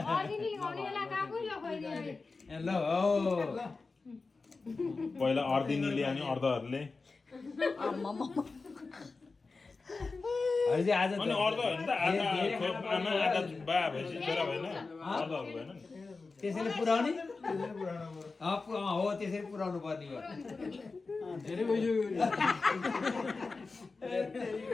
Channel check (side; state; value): right; quieter; 4.0 dB